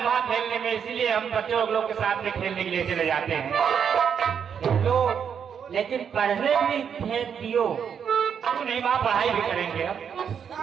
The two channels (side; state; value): left; quieter; 7.5 dB